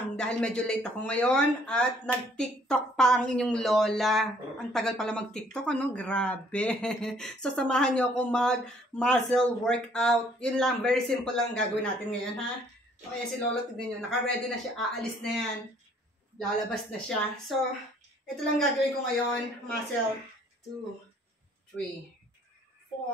dahil medyo late ako ngayon at nag-tiktok pa ang inyong Lola. Ang tagal pala mag-tiktok, ano? Grabe! So samahan nyo ako mag-muscle workout. Yun lang, very simple lang gagawin natin ngayon ha. Okay, si Lola, tignan nyo, naka-ready na siya, aalis na yan. Lalabas na siya. So, ito lang gagawin ko ngayon, muscle 2, 3,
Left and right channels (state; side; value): normal; both; correlation 0.61